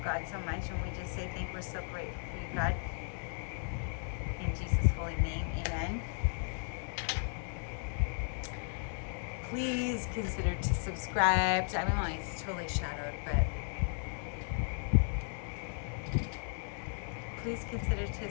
God so much, and we just say we're so grateful for you, God. In Jesus' holy name, amen. Please consider to subscribe. I mean, it's totally shadowed, but please consider to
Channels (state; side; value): silent; right; 54 dB below the other